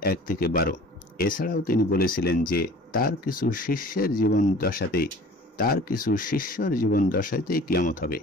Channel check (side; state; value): both; normal; correlation 0.45